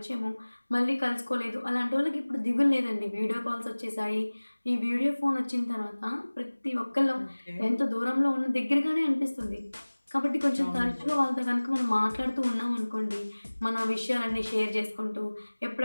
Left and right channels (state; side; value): inverted; both; correlation -1.00